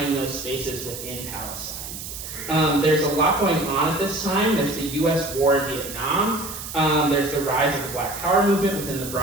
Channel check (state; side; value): noise; right; hiss, 9 dB below the sound